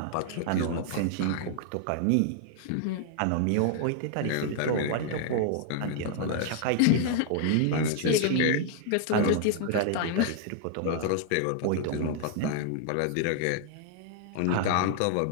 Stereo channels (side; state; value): both; different; correlation 0.00